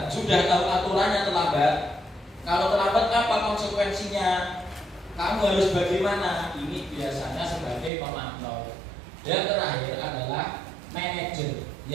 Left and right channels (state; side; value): drops out; left; at 7.9 s